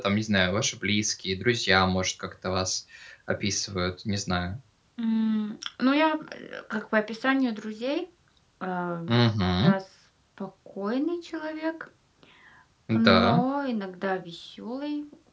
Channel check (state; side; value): identical; both; correlation 1.00